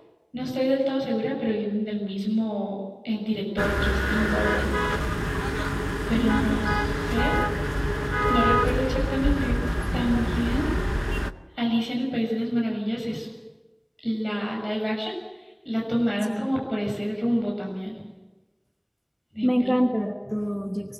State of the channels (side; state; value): both; identical; correlation 1.00